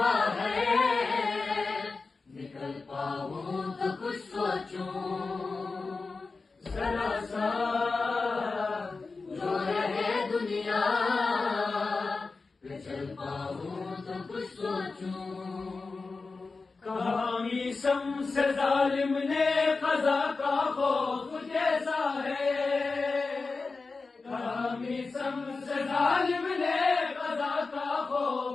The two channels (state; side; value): quieter; right; 4.1 dB